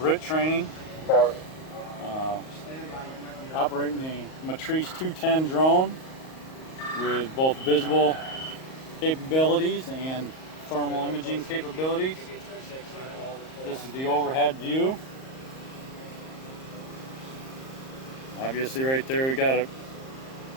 training. Operating the Matrice 210 drone with both visible capabilities and thermal imaging capabilities. This is the overhead view. Obviously right there we got a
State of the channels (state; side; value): late; right; 38 ms